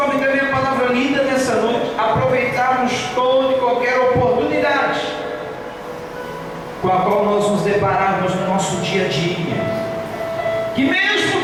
da minha palavra linda nessa noite, aproveitarmos toda e qualquer oportunidade com a qual nós nos depararmos no nosso dia a dia, que mesmo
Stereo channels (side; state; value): both; identical; correlation 1.00